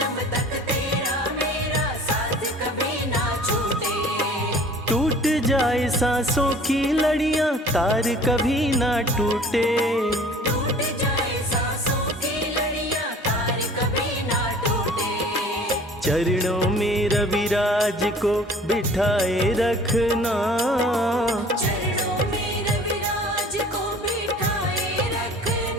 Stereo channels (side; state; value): both; normal; correlation 0.48